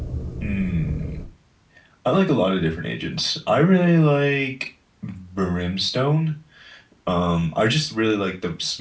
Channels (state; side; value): identical; both; correlation 1.00